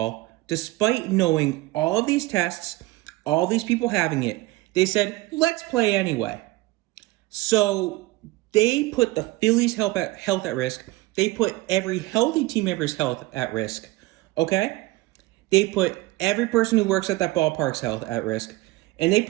despite knowing all of these tests, all these people having it. They said, let's play anyway. So they put the Phillies' health at risk. They put every healthy team member's health at risk, okay? They put every person who works at that ballpark's health at risk. And they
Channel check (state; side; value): quieter; left; 19.6 dB